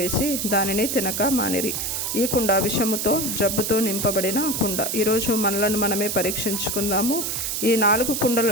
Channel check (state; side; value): noise; right; hiss, 2 dB below the sound